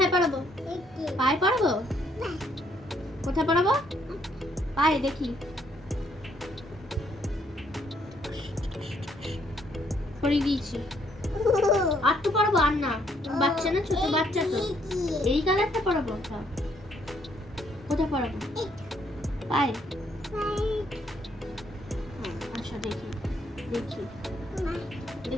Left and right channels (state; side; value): normal; both; correlation 0.70